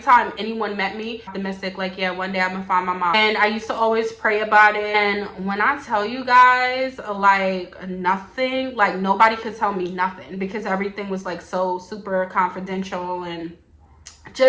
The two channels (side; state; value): both; identical; correlation 1.00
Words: anyone met me, optimistic, like, yeah, one day I'm gonna find my mom. And I used to always pray about it. And when I tell you guys, like, nothing, like, nobody could tell me nothing, because everything was like so super confidential and